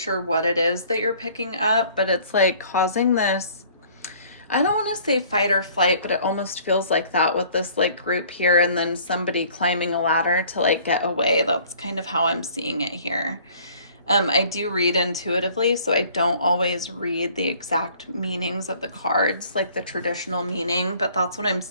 what it is that you're picking up, but it's like causing this, I don't want to say fight or flight, but it almost feels like that with this like group here and then somebody climbing a ladder to like get away. That's kind of how I'm seeing it here. I do read intuitively, so I don't always read the exact meanings of the cards, like the traditional meaning, but that's what I'm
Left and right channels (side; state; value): both; inverted; correlation -0.55